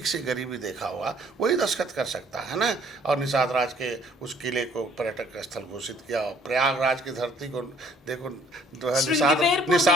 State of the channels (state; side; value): normal; both; correlation 0.59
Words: से गरीबी देखा हुआ, वही दस्तखत कर सकता है ना। और निषाद राज के उस किले को पर्यटक स्थल घोषित किया, और प्रयागराज की धरती को देखो,